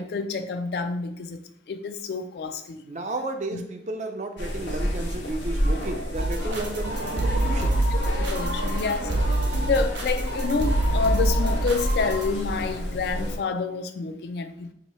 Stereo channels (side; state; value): both; normal; correlation 0.55